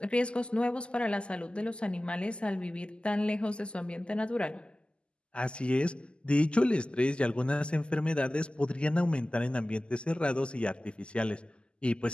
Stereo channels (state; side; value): late; right; 0.051 ms